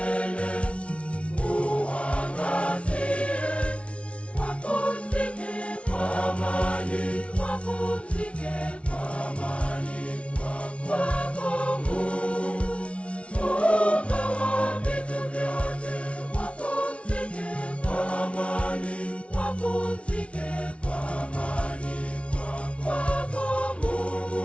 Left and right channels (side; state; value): right; late; 0.061 ms